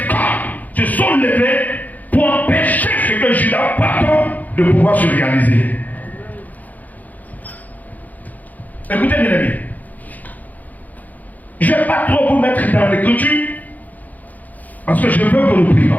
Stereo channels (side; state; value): right; late; 0.080 ms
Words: corps se sont levés pour empêcher ce que Juda porte de pouvoir se réaliser. Écoutez bien aimé, je ne vais pas trop vous mettre dans l'écriture parce que je veux que nous